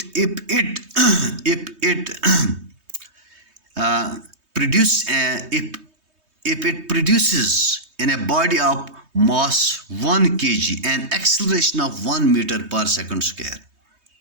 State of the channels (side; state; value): left; late; 3.2 ms